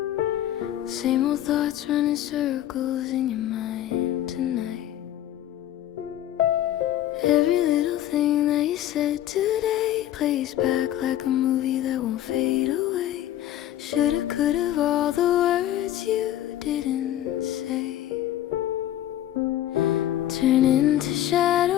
Same old thoughts running circles in your mind tonight. Every little thing that you said today plays back like a movie that won't fade away. Shoulda, coulda, all the words you didn't say turn into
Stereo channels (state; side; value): quieter; right; 12.6 dB